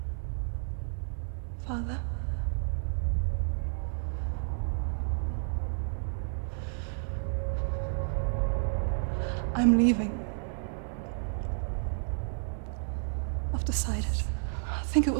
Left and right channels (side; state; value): left; silent; 57 dB below the other